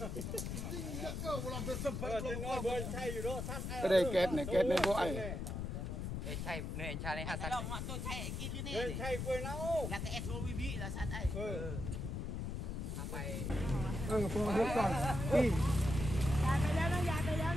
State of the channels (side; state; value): left; noise; rumble, 4 dB below the sound